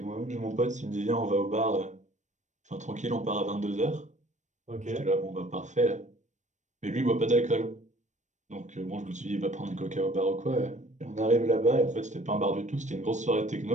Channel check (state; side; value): late; left; 0.35 ms